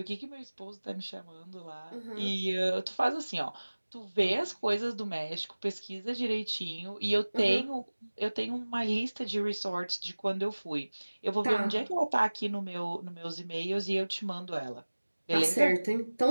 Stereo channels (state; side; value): inverted; both; correlation -1.00